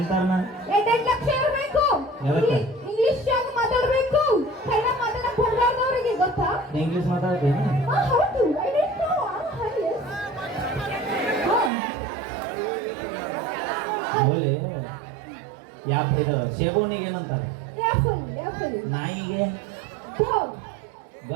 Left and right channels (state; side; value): drops out; left; at 11.7 s